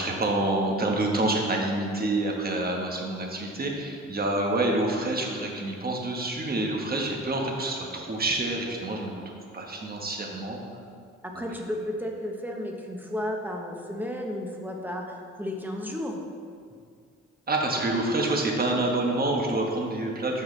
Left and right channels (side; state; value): both; normal; correlation 0.37